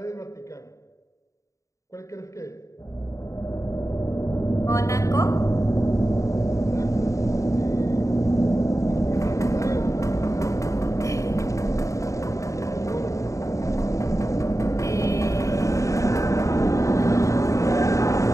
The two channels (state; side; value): late; right; 0.15 ms